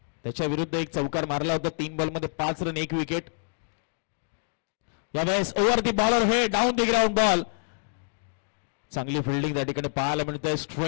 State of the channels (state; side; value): silent; right; digital silence